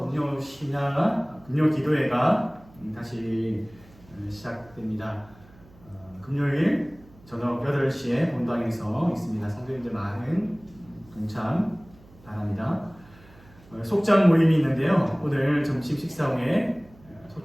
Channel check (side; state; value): right; noise; hum, 25 dB below the sound